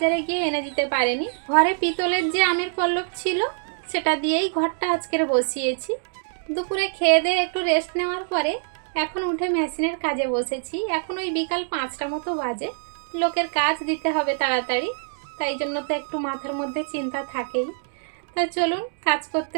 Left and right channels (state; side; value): silent; left; digital silence